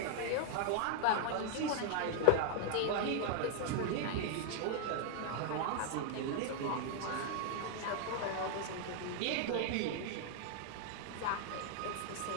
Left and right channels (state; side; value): different; both; correlation 0.00